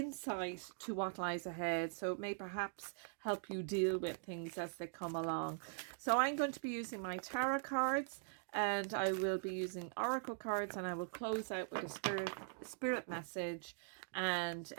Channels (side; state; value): left; silent; digital silence